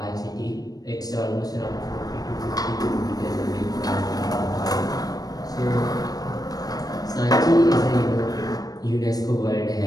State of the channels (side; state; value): right; late; 0.18 ms